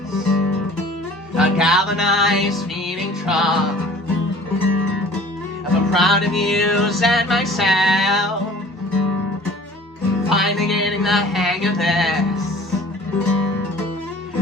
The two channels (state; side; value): normal; both; correlation 0.47